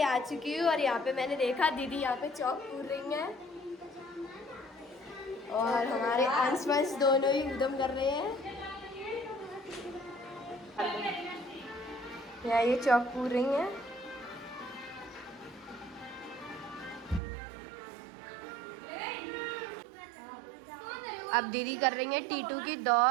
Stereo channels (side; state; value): left; drops out; at 17.2 s